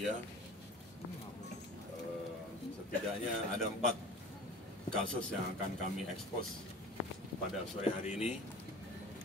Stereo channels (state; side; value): normal; both; correlation 0.40